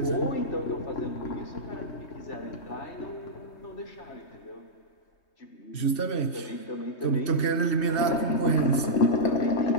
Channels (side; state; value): right; late; 3.2 ms